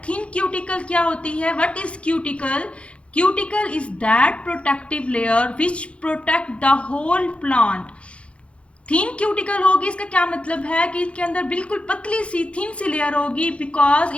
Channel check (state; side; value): late; right; 0.060 ms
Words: थिन क्यूटिकल क्या होती है? What is cuticle? Cuticle is that protective layer which protect the whole plant. Thin cuticle होगी, इसका क्या मतलब है कि इसके अंदर बिल्कुल पतली सी थिन सी लेयर होगी। बिकॉज